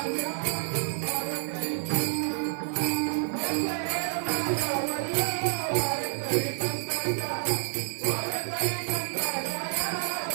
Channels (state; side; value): silent; left; 59 dB below the other